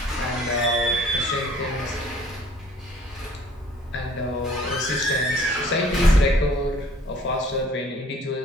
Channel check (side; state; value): both; normal; correlation 0.55